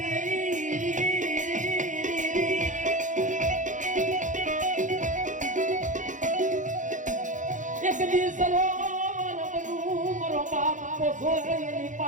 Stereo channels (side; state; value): left; late; 0.37 ms